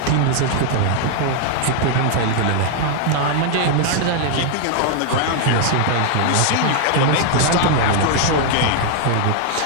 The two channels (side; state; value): both; different; correlation 0.00